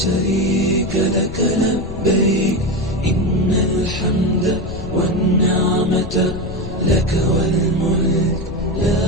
لك لبيك إن الحمد والنعمة لك والملك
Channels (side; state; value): left; noise; rumble, 9 dB below the sound